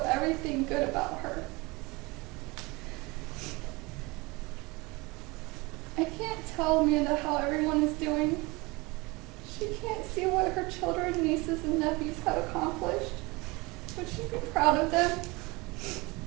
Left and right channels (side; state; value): left; quieter; 24.5 dB